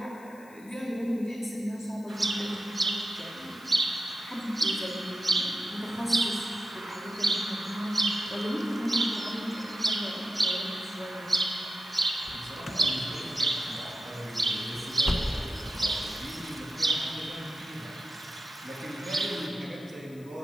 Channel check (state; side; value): noise; left; hiss, 25 dB below the sound